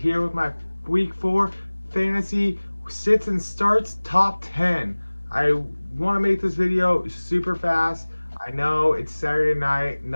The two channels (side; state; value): both; inverted; correlation -1.00